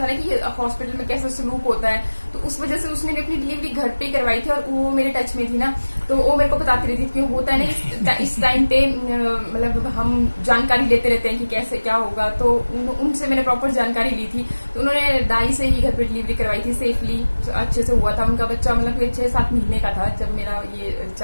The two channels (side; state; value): both; inverted; correlation -1.00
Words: ना कि हॉस्पिटल में कैसा सलूक होता है, तो उस वजह से उसने भी अपनी डिलीवरी घर पे करवाई थी, और वो मेरे टच में थी ना, तो वो मेरे को बताती रहती थी कि होता है ना इस टाइम पे मतलब हम जानकारी लेते रहते हैं कि कैसे क्या होगा, तो उनसे मैंने प्रॉपर जानकारी ली थी, तो उन्होंने दाई से ही घर पे डिलीवरी करवाई थी, सेफली अच्छे से हुआ था, उनका बच्चा मतलब 6-7 महीने का था जब मेरा ये